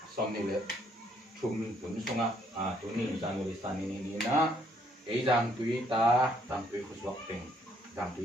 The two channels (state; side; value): normal; both; correlation 0.68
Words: som ni le chum tun songa tu ni jang li san ni na ei jang tui ta tang tui khuswak ting jang tui